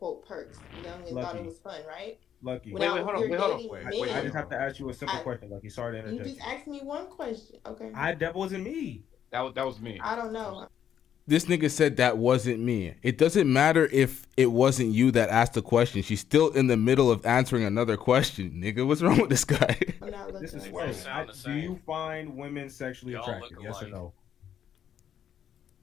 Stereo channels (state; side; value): quieter; right; 9.4 dB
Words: perks, you know, and thought it was fun, right? Lucky. Wait, hold on. I just have to ask you a simple question, Lucky. Sorry to You interject. just asked me one question, okay? That wasn't me. That was me. I don't know. This nigga said that wasn't me. It doesn't matter if it wasn't you that asked the question. She's still in the middle of answering another question. Nigga, what's wrong with this guy? This is Sway. Do you find women sexually attractive? Yes or no?